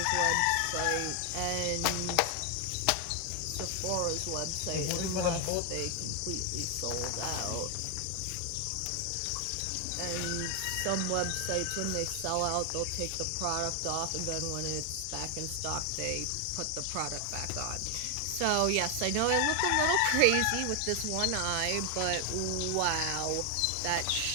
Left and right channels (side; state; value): both; different; correlation 0.00